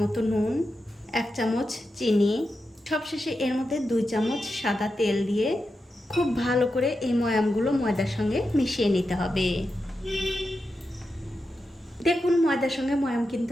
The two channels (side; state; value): both; normal; correlation 0.89